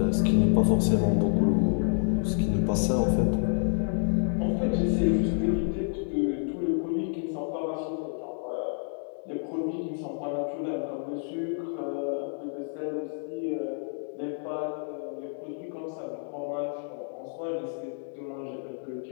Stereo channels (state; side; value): silent; right; 59 dB below the other